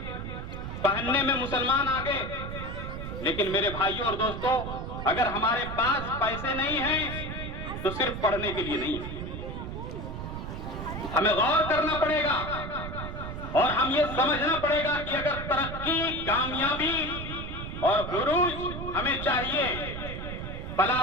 पहनने में मुसलमान आगे, लेकिन मेरे भाइयों और दोस्तों, अगर हमारे पास पैसे नहीं हैं तो सिर्फ पढ़ने के लिए नहीं है। हमें गौर करना पड़ेगा और हम ये समझना पड़ेगा कि अगर तरक्की, कामयाबी और उरूज हमें चाहिए,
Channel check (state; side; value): noise; right; rumble, 7 dB below the sound